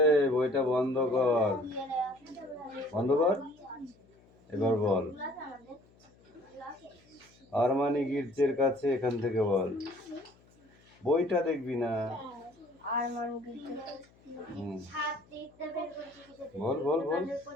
বইটা বন্ধ কর, বন্ধ কর। এবার বল, আরমানি গির্জের কাছে, এখান থেকে বল। বইটা দেখবি না, আর মানুষ হুম। সাত দিকটা বের করছি কিসের বল বল বল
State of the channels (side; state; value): left; noise; hum, 29 dB below the sound